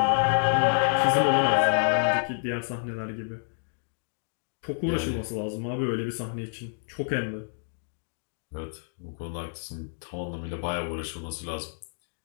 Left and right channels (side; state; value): right; silent; digital silence